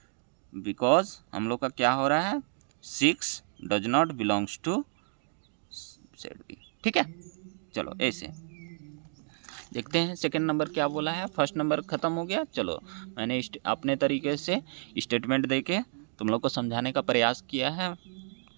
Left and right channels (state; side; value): silent; left; digital silence